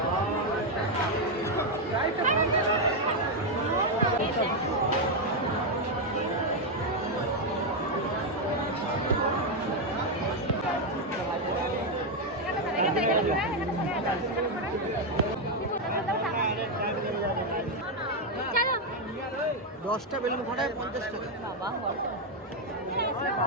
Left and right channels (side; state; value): both; normal; correlation 0.03